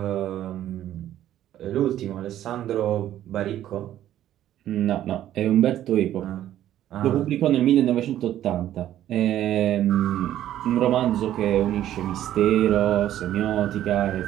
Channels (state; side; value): quieter; left; 12.2 dB